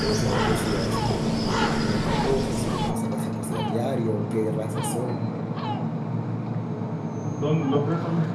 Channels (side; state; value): both; identical; correlation 1.00